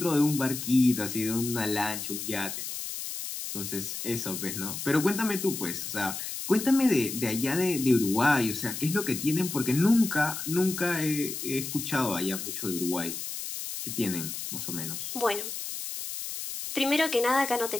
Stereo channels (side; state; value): left; noise; hiss, 6 dB below the sound